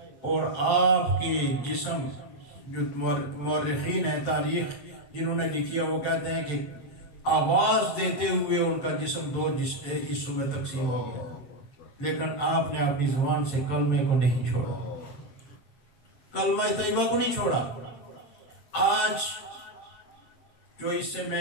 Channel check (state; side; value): late; right; 7.4 ms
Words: اور آپ کے جسم، جو مورخین ہیں تاریخ جنہوں نے لکھی ہے، وہ کہتے ہیں کہ آواز دیتے ہوئے ان کا جسم 2 حصوں میں تقسیم ہو گیا، لیکن آپ نے اپنی زبان سے کلمے کو نہیں چھوڑا، کلمہ طیبہ کو نہیں چھوڑا۔ آج جو اس سے